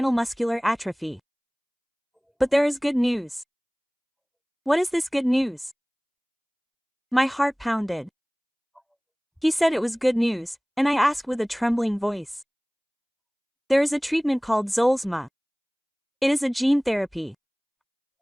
muscular atrophy. But there is good news. What is this good news? My heart pounded. He said it was good news, and I asked with a trembling voice. There is a treatment called Zolsma. It is a gene therapy.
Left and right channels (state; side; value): identical; both; correlation 1.00